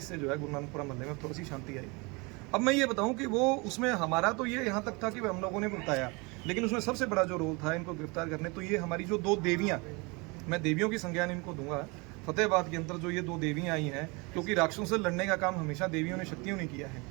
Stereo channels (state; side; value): quieter; left; 27.9 dB